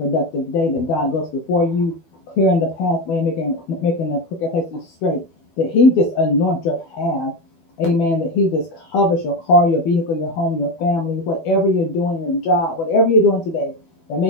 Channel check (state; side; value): late; right; 12 ms